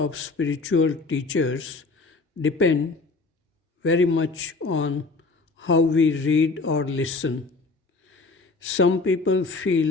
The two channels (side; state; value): right; quieter; 3.8 dB